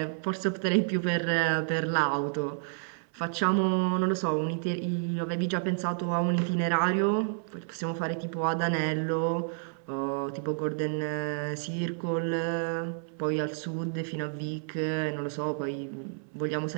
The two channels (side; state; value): left; silent; 58 dB below the other